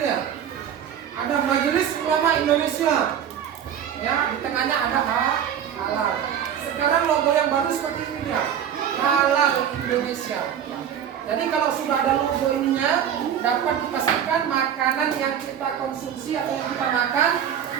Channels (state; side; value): quieter; left; 9.1 dB